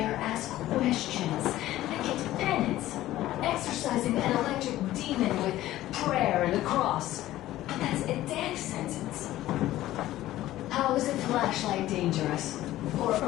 ask questions, they get penance. Exercising an electric demon with prayer and a cross. But that's a death sentence. How is a flashlight dangerous? Or a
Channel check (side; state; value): right; quieter; 14.9 dB